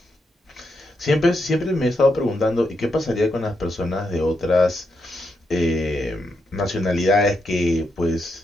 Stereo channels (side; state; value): both; normal; correlation 0.82